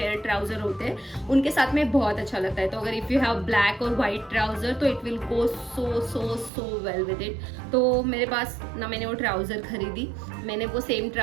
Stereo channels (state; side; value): drops out; left; at 6.5 s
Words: ट्राउज़र होते हैं, उनके साथ में बहुत अच्छा लगता है। तो अगर इफ़ यू हैव ब्लैक और वाइट ट्राउज़र तो it will go so so so well with it. तो मेरे पास ना मैंने वो ट्राउज़र खरीदी, मैंने वो सेम